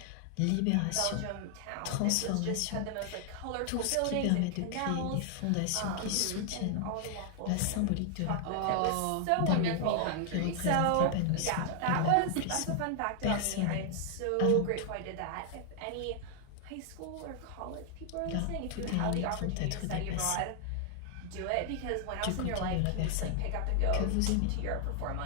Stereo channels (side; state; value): both; different; correlation 0.00